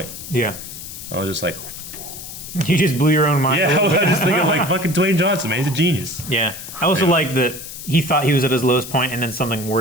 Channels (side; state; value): left; noise; hiss, 11 dB below the sound